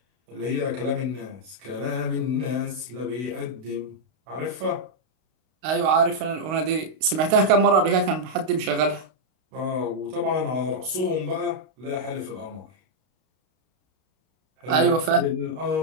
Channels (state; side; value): late; left; 32 ms